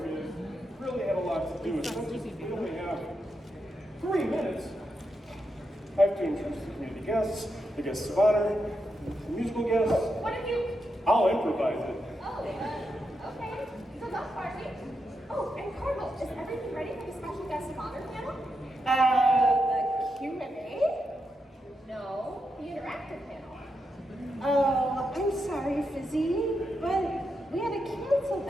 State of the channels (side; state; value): both; normal; correlation 0.85